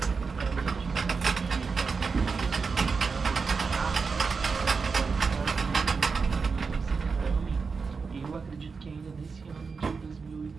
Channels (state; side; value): quieter; left; 5.0 dB